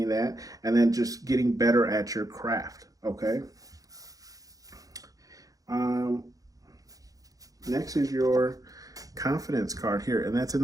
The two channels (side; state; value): left; late; 0.17 ms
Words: that, and then just getting better at your craft, okay? Next is your confidence card here, and that's in